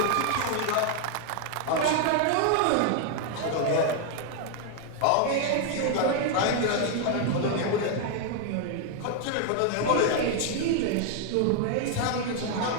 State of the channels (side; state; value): both; different; correlation 0.00